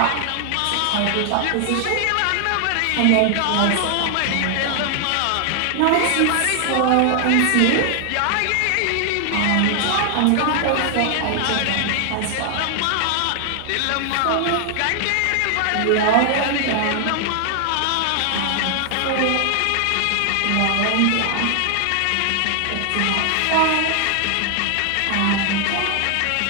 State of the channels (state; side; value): different; both; correlation 0.00